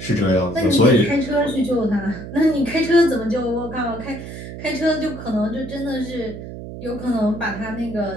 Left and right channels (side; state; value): right; noise; hum, 11 dB below the sound